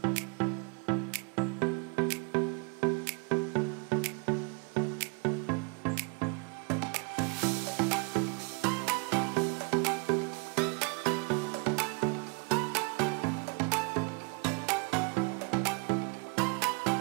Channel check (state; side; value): quieter; left; 33.5 dB